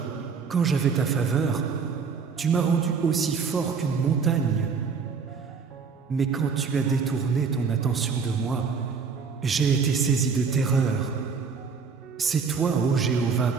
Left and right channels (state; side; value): quieter; left; 5.5 dB